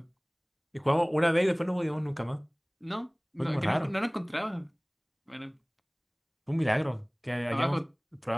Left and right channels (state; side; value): identical; both; correlation 1.00